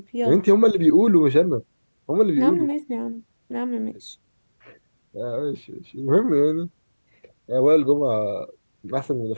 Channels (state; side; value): inverted; both; correlation -1.00